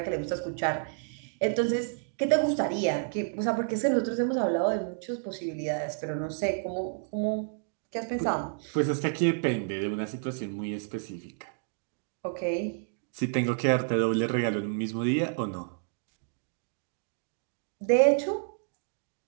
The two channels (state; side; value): silent; left; digital silence